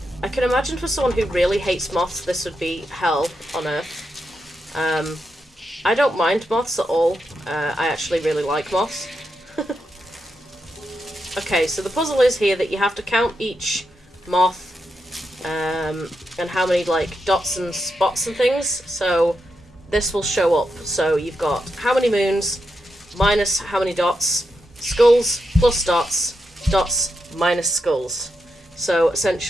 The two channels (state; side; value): normal; both; correlation 0.85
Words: I can imagine for someone who really hates moths, this would be hell on earth. I don't mind moths at all. I actually really like moths. Okay, so the puzzle is here that you have to count each moth, and how many, like, dots and spots and things. So this will show up. So you've got how many moons, minus how many dots, skulls plus dots, dots minus skulls. So